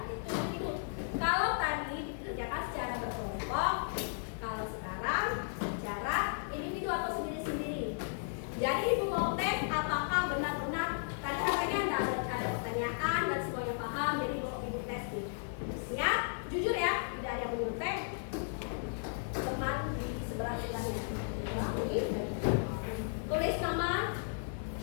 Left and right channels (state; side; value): silent; right; digital silence